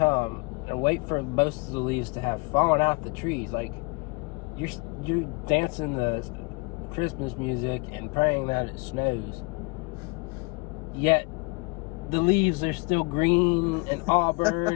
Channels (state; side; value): quieter; right; 28.6 dB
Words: and wait for most of the leaves to have fallen out the trees. Like, you're dancing the Christmas music and praying that it snows, yet the leaves are still green and